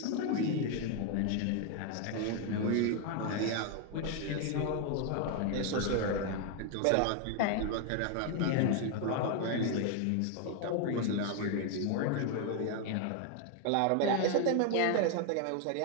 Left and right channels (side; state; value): both; different; correlation 0.01